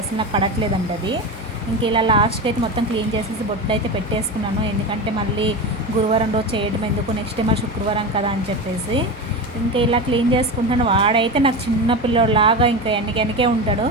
అసలు నాకు పడట్లేదండి అది. ఇంక ఇలా లాస్ట్కి అయితే మొత్తం క్లీన్ చేసేసి బొట్లు అయితే పెట్టేసుకున్నాను. ఎందుకంటే మళ్ళీ గురువారం రోజు చేయడం ఎందుకు, నెక్స్ట్ డే మరి శుక్రవారం కదా అని చెప్పేసి ఇంకా ఇలా క్లీన్ చేసుకుంటాను. వాడైతే నాకు చిన్న పిల్లోడిలాగా ఇంకా వెనకే ఉంటాడు.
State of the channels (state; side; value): normal; both; correlation 0.22